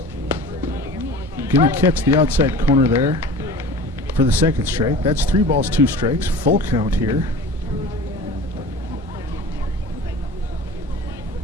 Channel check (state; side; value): normal; both; correlation 0.39